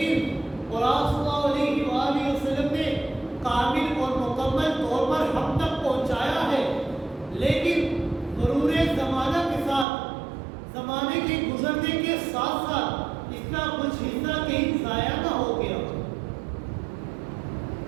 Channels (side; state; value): left; drops out; at 9.9 s